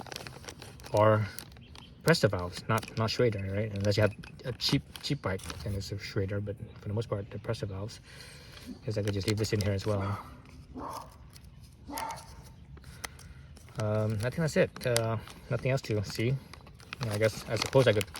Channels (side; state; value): both; identical; correlation 1.00